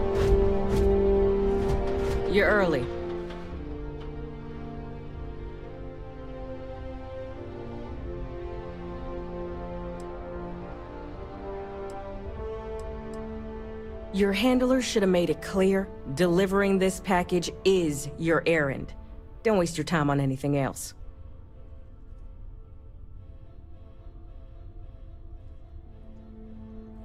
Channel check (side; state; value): both; identical; correlation 1.00